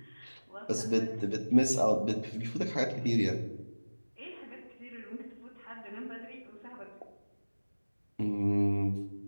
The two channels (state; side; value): inverted; both; correlation -1.00